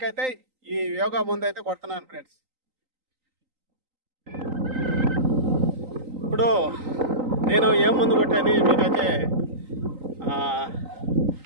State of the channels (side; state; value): left; late; 3.9 ms